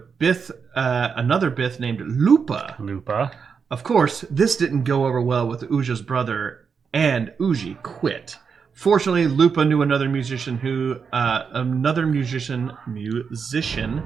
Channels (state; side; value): quieter; left; 6.0 dB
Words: Bith, another Bith named Lupa. Lupa. Of course, this didn't go over well with Uja's brother, and Uji quit. Fortunately, Lupa knew another musician